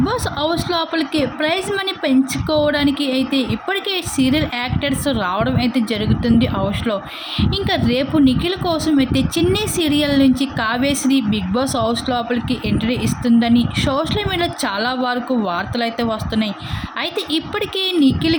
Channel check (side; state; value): both; identical; correlation 1.00